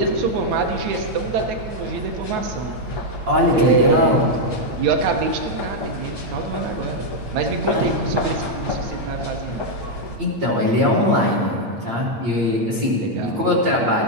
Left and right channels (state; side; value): late; left; 8.9 ms